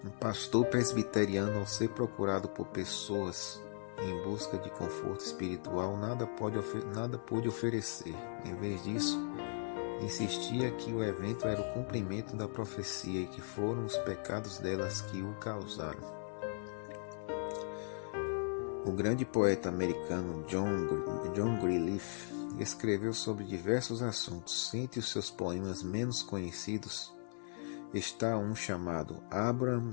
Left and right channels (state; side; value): silent; right; digital silence